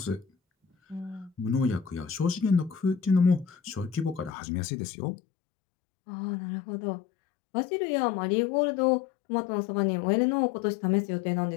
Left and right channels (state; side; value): drops out; right; at 4.3 s